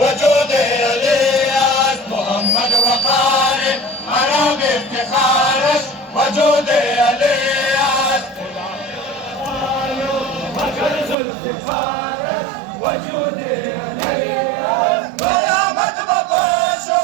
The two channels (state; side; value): drops out; left; at 11.2 s